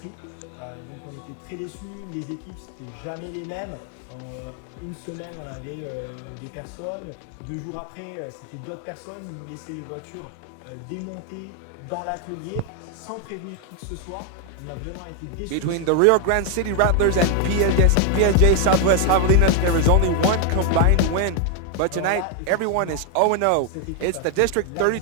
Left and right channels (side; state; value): both; different; correlation 0.00